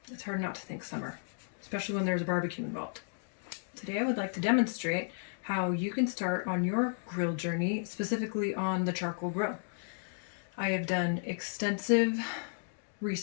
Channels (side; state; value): right; silent; digital silence